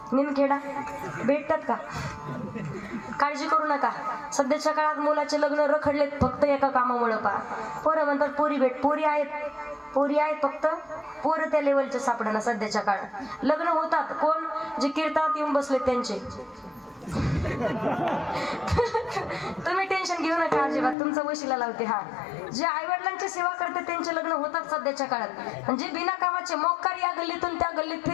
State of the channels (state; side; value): drops out; right; at 21.0 s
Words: निमखेडा भेटतात का? काळजी करू नका. सध्याच्या काळात मुलाचे लग्न रखडलेत फक्त एका कामामुळे. पा पोरं म्हणतात पोरी भेट, पोरी आहेत फक्त पोरं त्या लेवलचे सापडणं. सध्याच्या काळात लग्न होतात कोण जे कीर्तनात येऊन बसले त्यांचे. तुम्ही टेन्शन घेऊ नका अजिबात, तुमचा वशिला लावते. हा जे आई वडिलांची सेवा करते त्यांचे लग्न होतात सध्याच्या काळात. आणि जे बिना कामाचे मोक्कार या गल्लीतून त्या गल्लीत